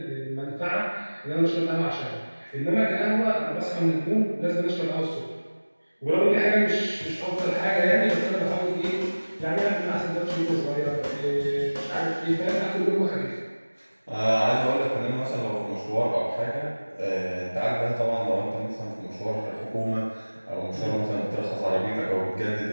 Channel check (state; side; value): inverted; both; correlation -1.00